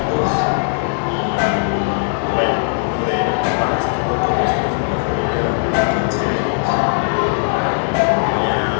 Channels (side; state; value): right; silent; digital silence